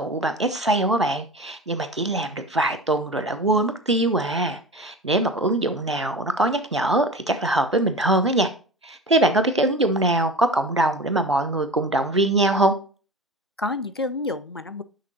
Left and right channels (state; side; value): normal; both; correlation 0.33